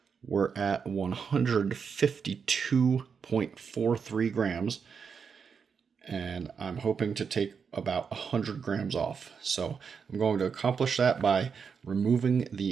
We're at 152.43 grams. And I'm hoping to take about 100 grams off. So I'm going to accomplish that by removing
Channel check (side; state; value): left; quieter; 6.2 dB